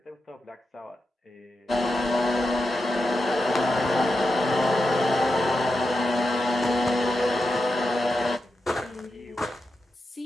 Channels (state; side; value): normal; both; correlation 0.88